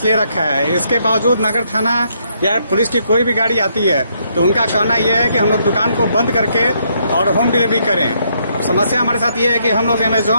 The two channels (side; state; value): both; inverted; correlation -0.73